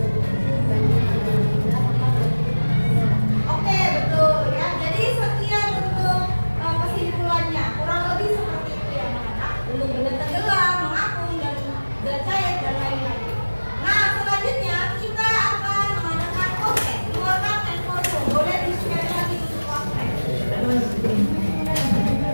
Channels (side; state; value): both; inverted; correlation -1.00